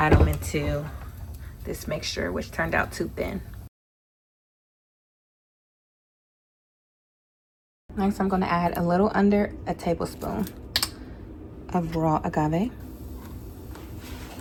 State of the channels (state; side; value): identical; both; correlation 1.00